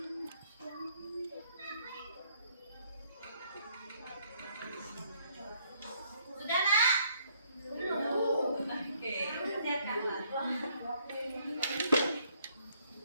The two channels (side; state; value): both; inverted; correlation -0.67